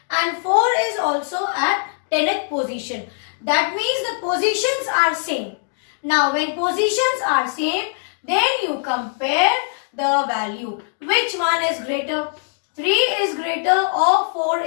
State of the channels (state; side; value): silent; right; digital silence